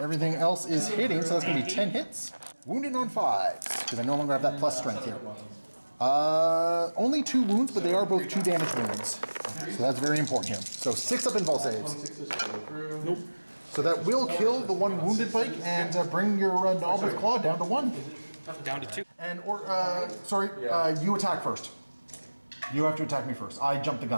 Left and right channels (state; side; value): inverted; both; correlation -1.00